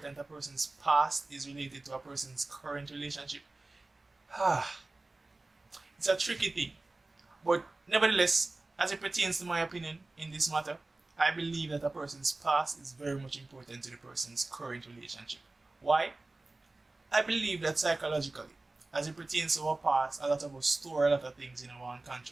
a person's past is related to a person's current relationship, it's a tricky thing. But nevertheless, as it pertains to my opinion in this matter, I believe that a person's past is very much important to the person's current relationship. Why? I believe that psychologically, as it pertains to our past, a lot of us store a lot of things in our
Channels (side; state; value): left; quieter; 3.1 dB